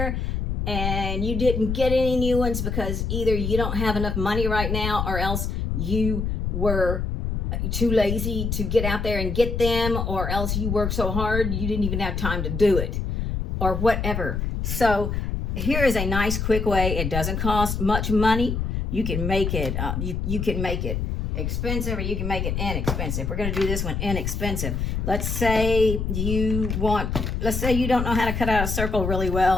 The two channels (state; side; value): noise; left; rumble, 2 dB below the sound